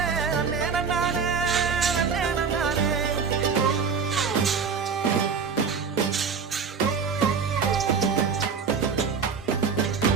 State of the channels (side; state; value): left; quieter; 5.9 dB